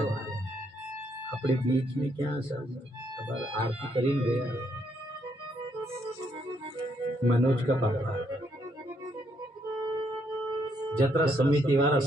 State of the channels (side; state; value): both; normal; correlation 0.73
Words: अपने बीच में क्या सब आरती करीन गया मनोज का पापा, जत्रा समिति वाला